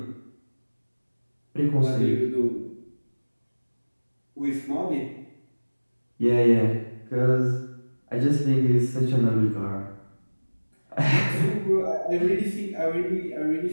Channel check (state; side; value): inverted; both; correlation -1.00